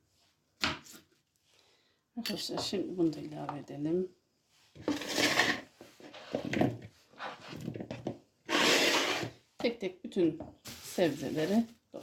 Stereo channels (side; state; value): both; identical; correlation 1.00